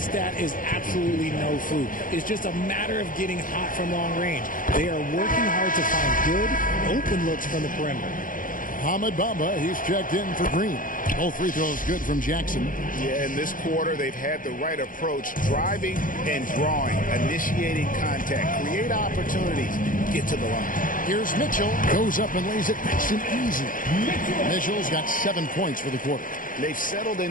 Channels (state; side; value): late; right; 0.39 ms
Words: is absolutely no fluke. It's just a matter of getting hot from long range. They are working hard to find good, open looks from the perimeter. Ahmed Bamba, he's checked in for Green. Both free throws good from Jackson. Yeah, in this quarter, they've had the right approach, driving and drawing, initiating contact, create opportunities, get to the line. Here's Mitchell, goes up and lays it nice and easy. Mitchell's got 7 points for the quarter. They've settled